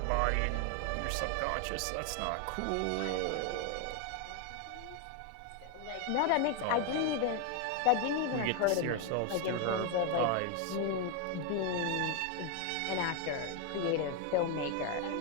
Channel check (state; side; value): different; both; correlation 0.01